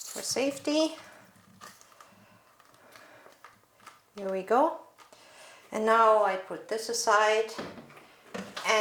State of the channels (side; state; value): both; identical; correlation 1.00